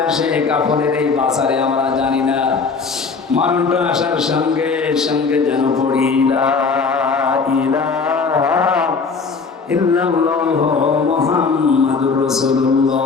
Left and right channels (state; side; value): quieter; right; 4.8 dB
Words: আসে কাপড়ের এই বাজারে আমরা জানি না। মরণটা আসার সঙ্গে সঙ্গে যেন পড়ি লা ইলাহা ইল্লাল্লাহু মুহাম্মাদুর